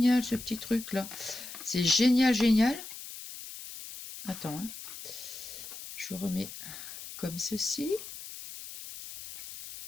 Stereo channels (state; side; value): noise; left; hiss, 12 dB below the sound